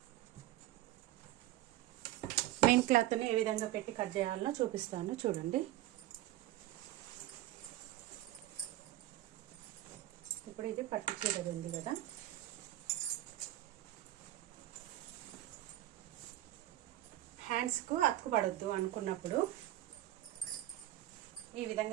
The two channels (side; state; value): left; quieter; 14.6 dB